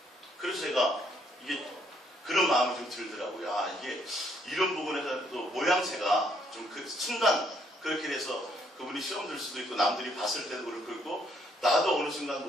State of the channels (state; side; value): normal; both; correlation 0.69